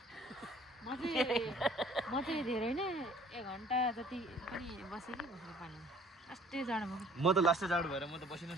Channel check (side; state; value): both; normal; correlation 0.55